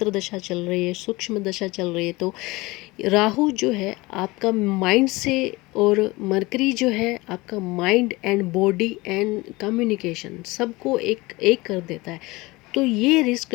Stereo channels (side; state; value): right; quieter; 22.1 dB